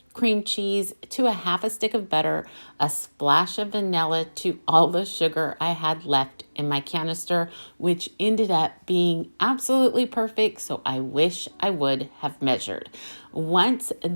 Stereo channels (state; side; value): inverted; both; correlation -1.00